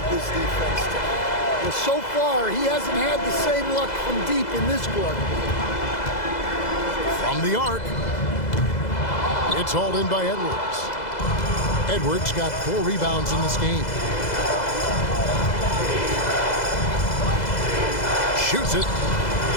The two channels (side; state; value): right; late; 2.0 ms